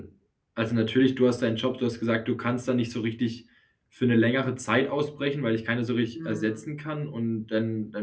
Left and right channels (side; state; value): both; identical; correlation 1.00